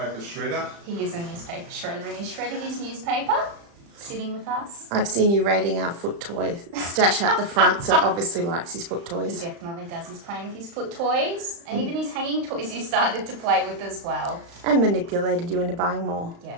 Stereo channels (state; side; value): late; left; 35 ms